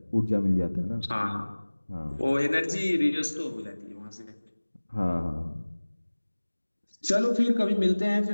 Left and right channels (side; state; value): both; inverted; correlation -1.00